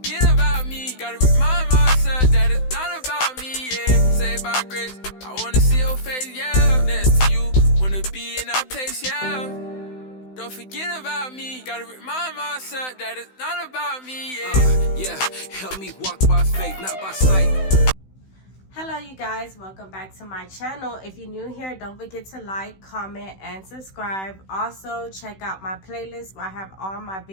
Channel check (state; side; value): late; right; 16 ms